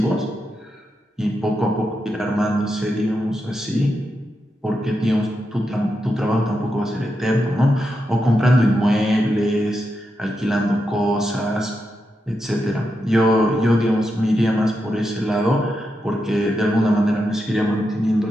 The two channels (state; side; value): normal; both; correlation 0.86